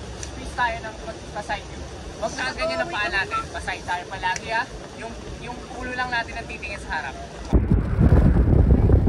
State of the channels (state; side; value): identical; both; correlation 1.00